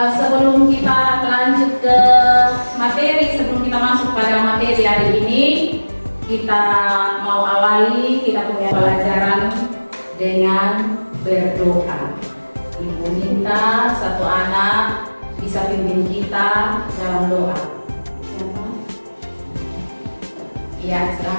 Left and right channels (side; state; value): both; inverted; correlation -1.00